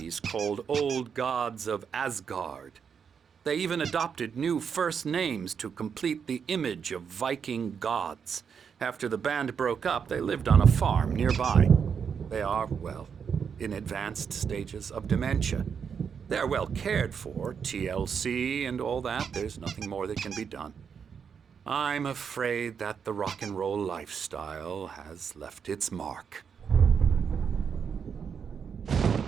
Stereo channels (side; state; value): left; quieter; 6.8 dB